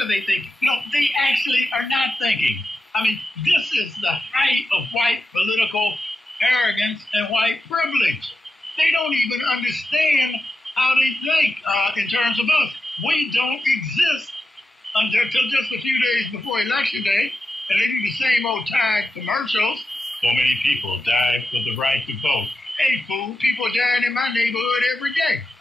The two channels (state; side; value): normal; both; correlation 0.89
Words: they thinking? No, they actually are not thinking. I mean, this is the height of white political arrogance and white privilege. They don't even understand how they think in terms of us. We don't exist until just a few days before Election Day, and they do the same old tired commercials. So many people died for the right to vote. Hey, fool, people dying in my neighborhood every day.